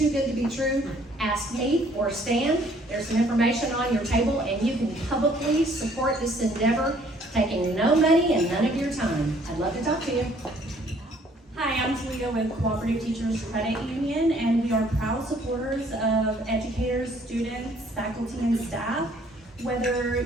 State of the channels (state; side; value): normal; both; correlation 0.61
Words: good to be true, ask me or Stan. There's some information on your table, and you can publicly support this endeavor, taking no money and none of your time. I'd love to talk to you. Hi, I'm Talia with Cooperative Teachers Credit Union, and we are proud supporters of educators, students, faculty, and staff. Whether